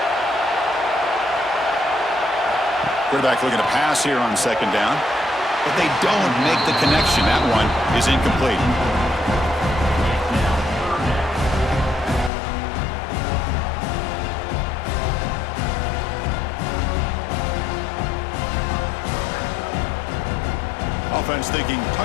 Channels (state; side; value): drops out; right; at 12.3 s